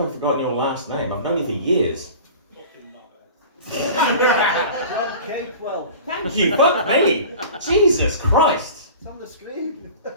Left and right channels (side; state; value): both; inverted; correlation -0.39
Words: forgotten your last name? I've known you for years. Jon Capewell. Thank you, fuck me. Jesus Christ. It's on the screen.